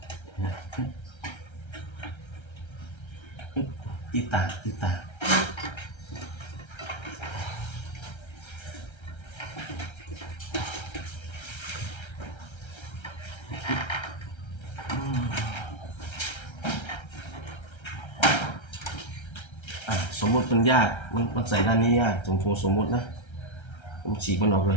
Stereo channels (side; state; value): right; late; 1.3 ms